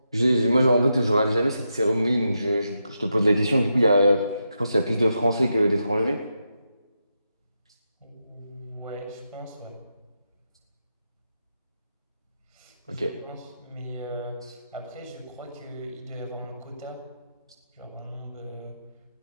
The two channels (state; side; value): inverted; both; correlation -0.85